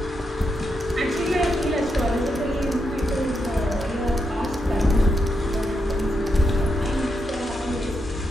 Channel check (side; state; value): both; normal; correlation 0.83